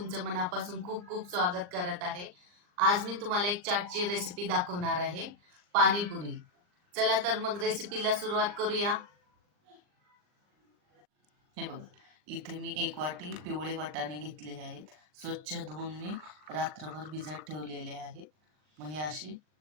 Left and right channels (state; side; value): late; left; 39 ms